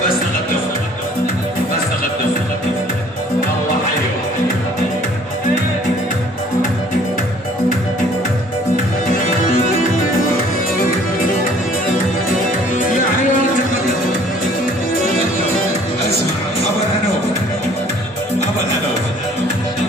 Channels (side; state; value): both; normal; correlation 0.55